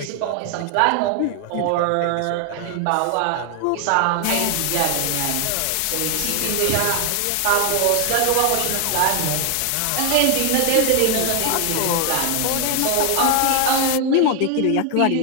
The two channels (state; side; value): different; both; correlation 0.00